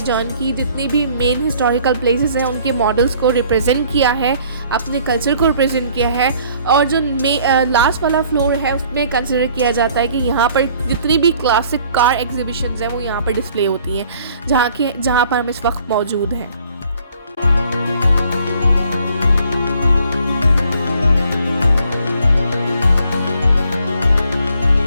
की जितनी भी मेन हिस्टोरिकल प्लेसेस हैं उनके मॉडल्स को रिप्रेजेंट किया है, अपने कल्चर को रिप्रेजेंट किया है। और जो लास्ट वाला फ्लोर है उसमें कंसिडर किया जाता है कि यहाँ पर जितनी भी क्लासिक कार एग्जीबिशंस हैं वो यहाँ पर डिस्प्ले होती हैं, जहाँ पर हम इस वक्त मौजूद हैं।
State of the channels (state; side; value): inverted; both; correlation -0.59